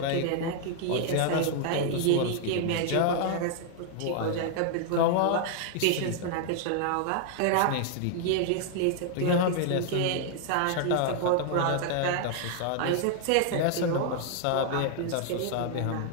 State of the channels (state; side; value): different; both; correlation 0.00